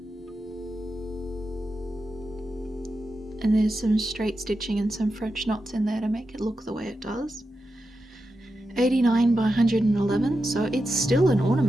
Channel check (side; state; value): both; normal; correlation 0.89